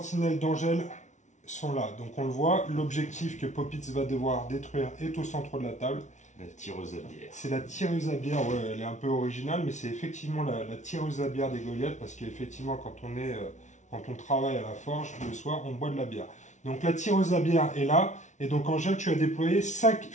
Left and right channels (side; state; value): right; late; 0.35 ms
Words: d'Angèle sont là. Donc on le voit, l'objectif que Popitz va devoir détruire est au centre de la table. La tireuse à bière. C'est la tireuse à bière, ouais, elle est un peu originale, mais c'est effectivement la tireuse à bière des Goliaths, parce qu'effectivement quand on travaille à la forge, le soir, on boit de la bière. Donc la tireuse à bière est là, et donc Angèle, tu as déployé 5